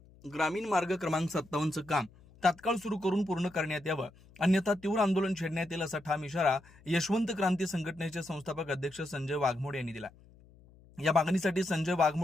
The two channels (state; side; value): noise; left; hum, 25 dB below the sound